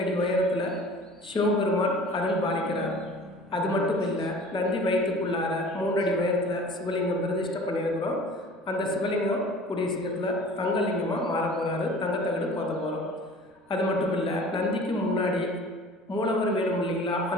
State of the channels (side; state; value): both; normal; correlation 0.44